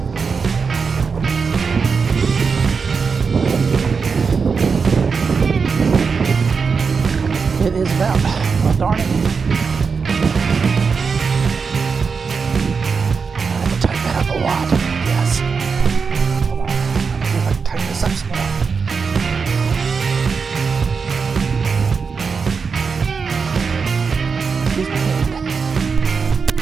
It is about, oh darn it. I have to tighten that up a lot. Yes. Hold on. Let me see if I can tighten this up some more. Excuse my hand.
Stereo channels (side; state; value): left; quieter; 5.3 dB